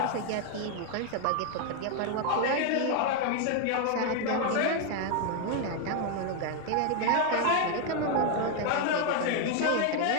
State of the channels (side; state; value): both; different; correlation 0.01